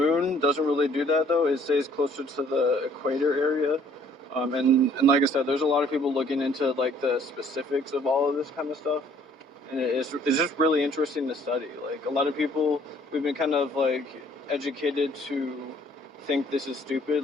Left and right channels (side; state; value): both; normal; correlation 0.59